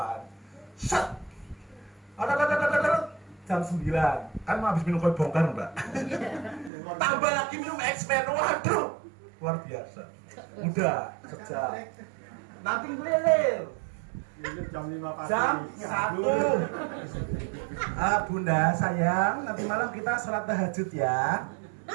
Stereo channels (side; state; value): left; drops out; at 6.7 s